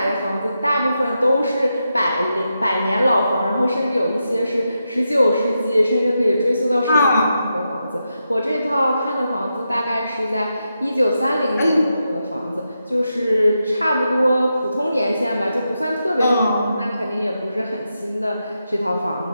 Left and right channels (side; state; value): both; inverted; correlation -0.86